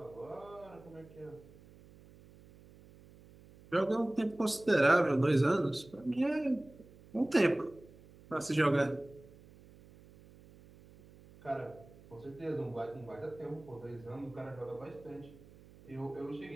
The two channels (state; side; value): noise; right; hum, 22 dB below the sound